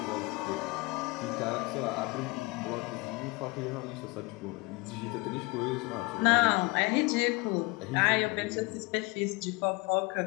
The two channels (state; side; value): quieter; right; 26.3 dB